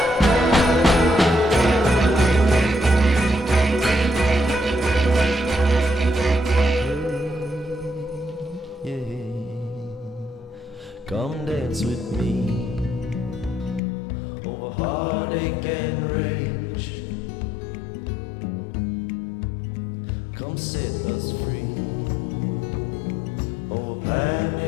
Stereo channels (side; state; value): right; drops out; at 13.8 s